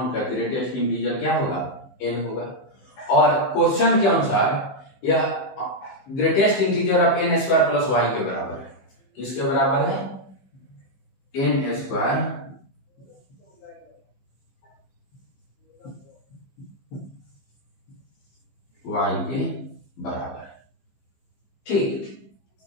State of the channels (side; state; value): right; late; 15 ms